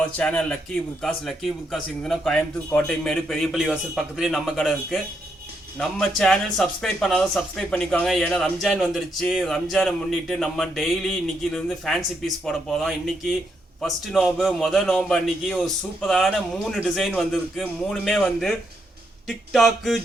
channel Lucky Burkas. Lucky Burkas இங்கனா Coimbatore Kottaimedu பெரியபள்ளி வாசல் பக்கத்துலயே நம்ம கடை இருக்கு. நம்ம சேனல் சப்ஸ்கிரைப் பண்ணாத சப்ஸ்கிரைப் பண்ணிக்கோங்க. ஏன்னா ரம்ஜான் வந்துருச்சு. ரம்ஜானை முன்னிட்டு நம்ம டெய்லி இன்னைக்கில இருந்து ஃபேன்சி பீஸ் போட போறோம். இன்னைக்கு ஃபர்ஸ்ட் நோம்பு முதல் நோம்பு அன்னைக்கு ஒரு சூப்பரான 3 டிசைன் வந்திருக்கு. மூணுமே வந்து டிக்டாக்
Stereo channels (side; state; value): both; normal; correlation 0.78